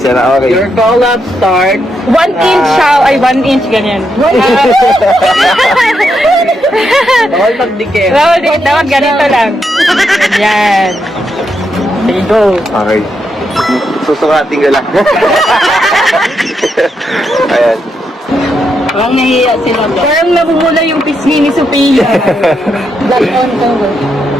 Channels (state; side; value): normal; both; correlation 0.81